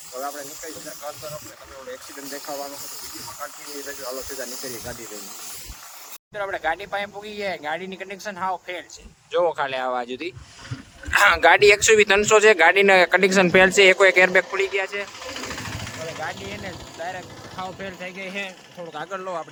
હવે આપણે નીકળી જતા ઘર તરફ ને તમે ઓલો એક્સિડન્ટ દેખાવાનો હતો વિડીયોમાં કન્ટિન્યુ રહેજો. હાલો સીધા નીકળીએ ગાડી લઈને. મિત્રો આપણે ગાડી પાસે પૂગી ગયા. ગાડીની કન્ડિશન હાવ ફેલ છે. જોવો ખાલી આવા સુધી ગાડી 120-300 છે. ગાડીના કન્ડિશન ફેલ છે. એક એરબેગ ખુલી ગયા છે. હવે ગાડી એને ડાયરેક્ટ હાવ ફેલ થઈ ગઈ છે. થોડુંક આગળ લો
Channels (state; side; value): identical; both; correlation 1.00